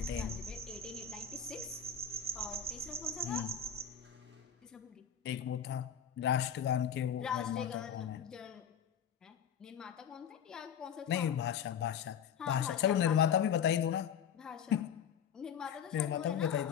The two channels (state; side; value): quieter; right; 7.8 dB